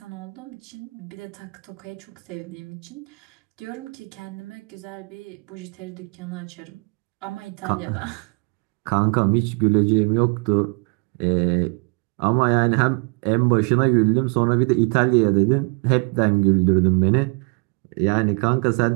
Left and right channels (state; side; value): quieter; left; 32.2 dB